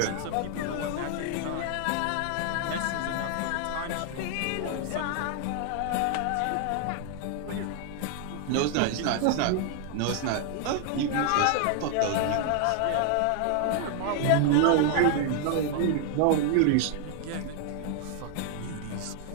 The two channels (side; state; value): both; different; correlation 0.00